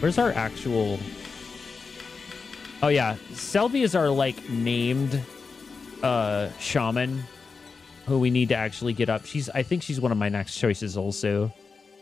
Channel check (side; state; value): right; quieter; 4.8 dB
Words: our actual... Oh, yeah. Selvi is our, like, named shaman who we need to actually get up. I think she's one of my next choices also.